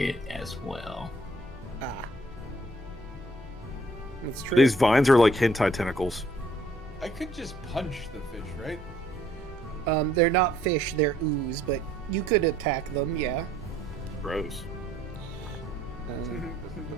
as well. Ah. That's true. These vines are like hentai tentacles. I could just punch the fish, right? They're not fish, they're ooze, but you could attack them, yeah. Gross.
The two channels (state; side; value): normal; both; correlation 0.63